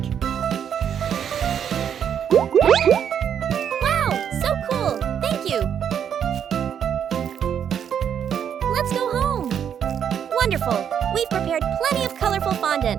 Wow, so cool! Thank you! Let's go home. Wonderful! We've prepared plenty of colorful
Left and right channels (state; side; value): quieter; left; 8.5 dB